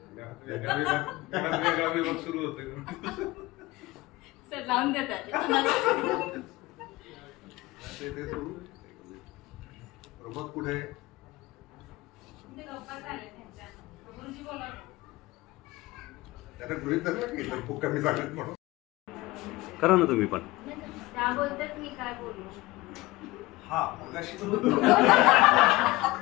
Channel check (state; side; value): quieter; right; 20.2 dB